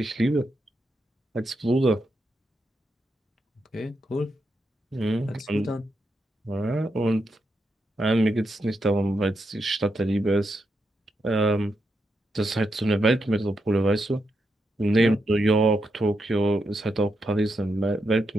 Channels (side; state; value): both; normal; correlation 0.84